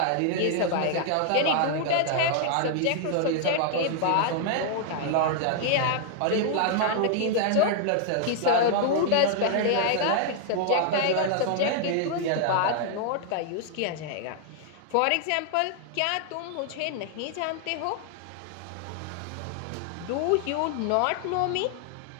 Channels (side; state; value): both; different; correlation 0.00